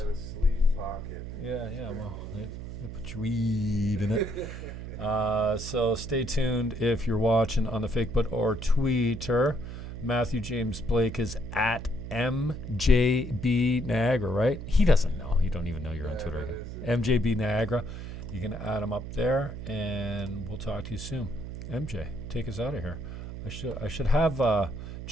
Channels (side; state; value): right; noise; hum, 9 dB below the sound